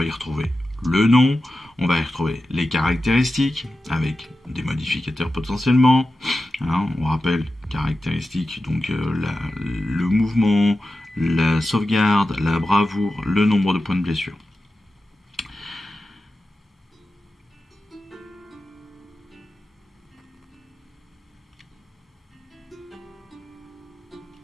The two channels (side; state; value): both; normal; correlation 0.92